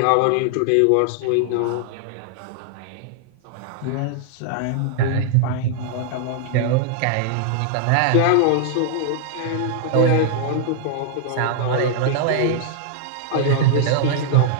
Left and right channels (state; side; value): different; both; correlation -0.01